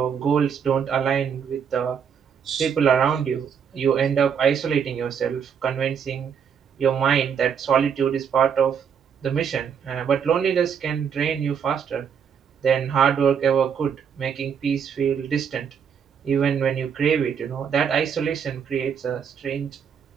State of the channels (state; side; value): quieter; left; 7.3 dB